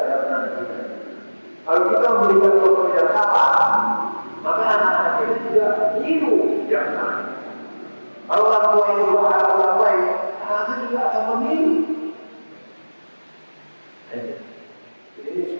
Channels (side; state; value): both; inverted; correlation -1.00